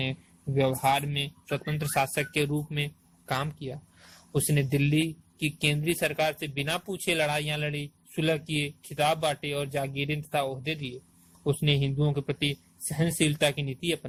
व्यवहार में स्वतंत्र शासक के रूप में काम किया। उसने दिल्ली की केंद्रीय सरकार से बिना पूछे लड़ाइयां लड़ी, सुलह किए, खिताब बांटे और जागीरें तथा ओहदे दिए। उसने हिंदुओं के प्रति सहनशीलता की नीति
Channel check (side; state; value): both; identical; correlation 1.00